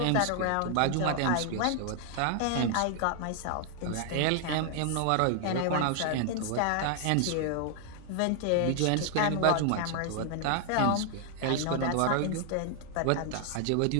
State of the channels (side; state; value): both; different; correlation 0.00